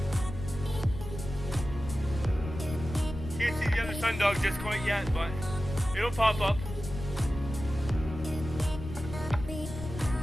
Can't see the other sun dog just quite yet, but it'll pop up.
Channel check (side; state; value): left; noise; rumble, 9 dB below the sound